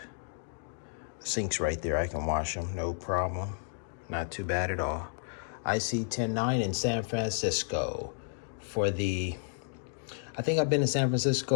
The sink's right there, I can wash them, no problem. Not too bad at all. iSee109 in San Francisco for I think I've been to San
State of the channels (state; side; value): silent; right; digital silence